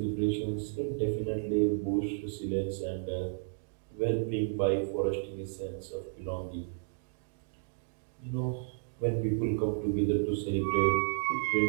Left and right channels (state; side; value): silent; left; digital silence